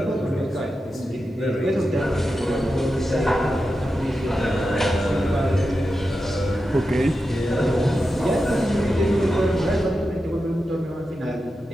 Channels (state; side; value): normal; both; correlation 0.90